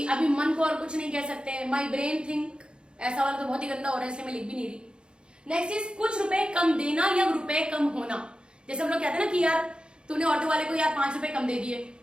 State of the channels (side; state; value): left; late; 0.052 ms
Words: अभी मन को और कुछ नहीं कह सकते। माई ब्रेन थिंक, ऐसा वाला तो बहुत ही गंदा हो रहा है इसलिए मैं लिख भी नहीं रही। नेक्स्ट इज कुछ रुपए कम देना या रुपए कम होना। जैसे हम लोग कहते हैं ना कि यार तूने ऑटो वाले को यार 5 रुपए कम दे दिए,